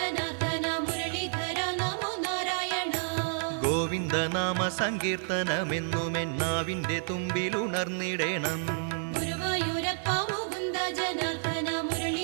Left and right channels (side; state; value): left; silent; 58 dB below the other